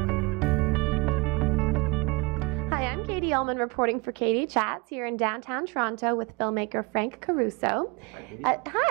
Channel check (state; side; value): quieter; left; 26.9 dB